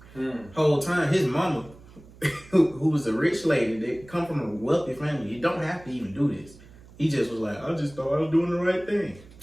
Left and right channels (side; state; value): right; noise; hum, 22 dB below the sound